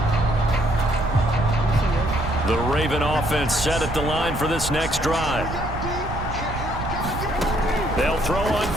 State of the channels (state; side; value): noise; right; rumble, 7 dB below the sound